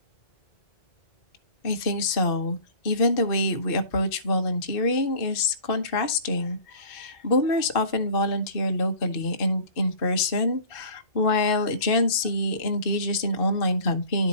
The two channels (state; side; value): late; right; 2.6 ms